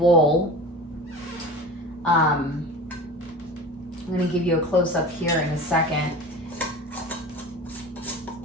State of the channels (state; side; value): normal; both; correlation 0.35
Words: I'm gonna give you a close-up here in a second.